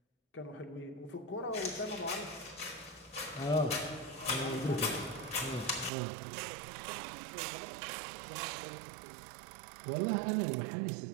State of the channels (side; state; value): left; drops out; at 5.9 s